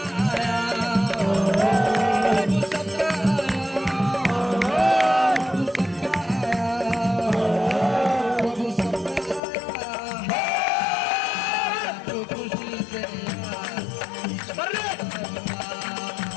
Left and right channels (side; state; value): right; drops out; at 9.4 s